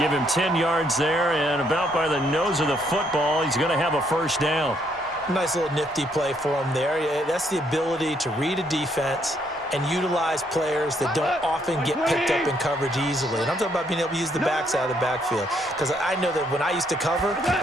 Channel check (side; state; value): both; normal; correlation 0.71